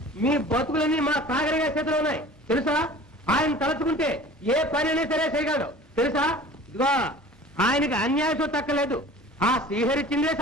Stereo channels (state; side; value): normal; both; correlation 0.43